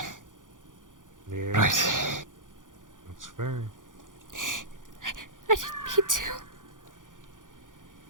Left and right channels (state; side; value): late; left; 0.88 ms